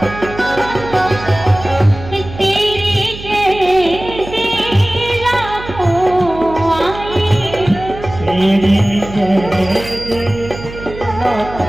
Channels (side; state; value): right; noise; hum, 13 dB below the sound